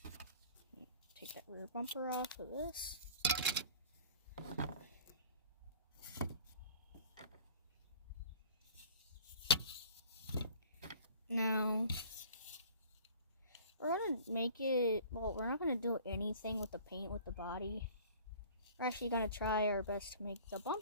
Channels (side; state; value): both; inverted; correlation -0.46